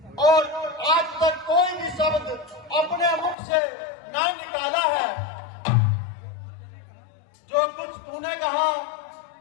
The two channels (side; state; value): right; drops out; at 3.4 s